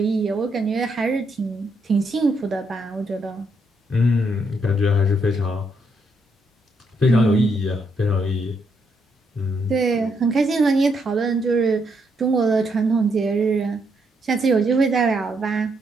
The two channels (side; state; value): both; normal; correlation 0.76